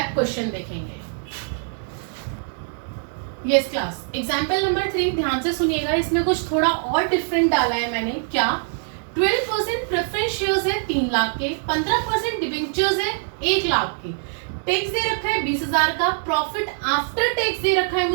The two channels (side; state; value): left; silent; digital silence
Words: क्वेश्चन देखेंगे। यस क्लास, एग्जांपल नंबर 3 ध्यान से सुनिएगा, इसमें कुछ थोड़ा और डिफरेंट डाला है मैंने। क्या? 12% प्रेफरेंस शेयर्स है 3 लाख के, 15% डिबेंचर्स है 1 लाख के, टैक्स दे रखा है 20,000 का, प्रॉफिट आफ्टर टैक्स दे रखा है